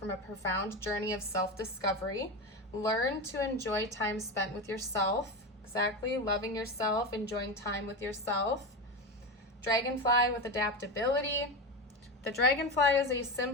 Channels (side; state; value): both; normal; correlation 0.20